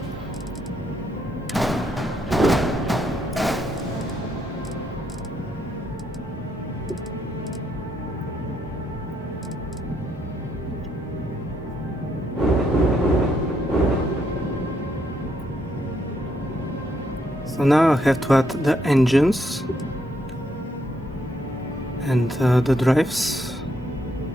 So now I have to add the engines and the drives.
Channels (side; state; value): both; normal; correlation 0.75